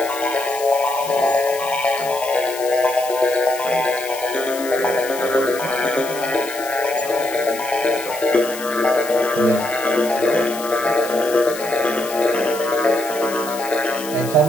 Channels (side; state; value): left; noise; hiss, 12 dB below the sound